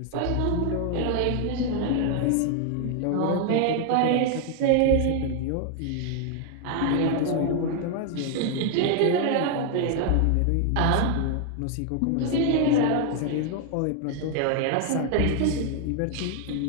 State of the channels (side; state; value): both; different; correlation 0.00